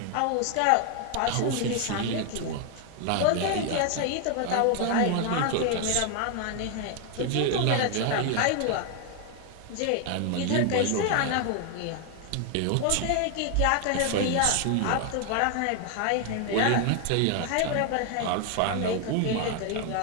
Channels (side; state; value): both; different; correlation 0.00